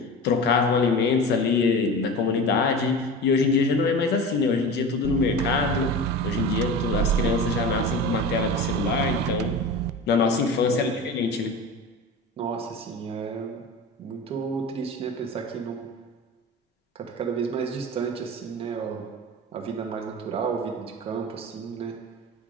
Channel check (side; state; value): both; normal; correlation 0.31